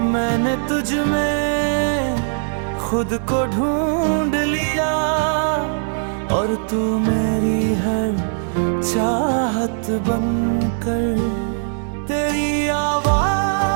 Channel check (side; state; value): left; silent; 65 dB below the other